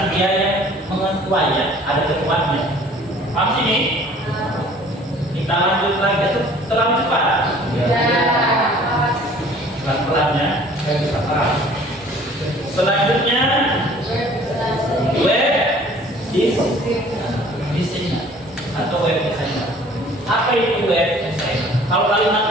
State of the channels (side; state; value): both; normal; correlation 0.52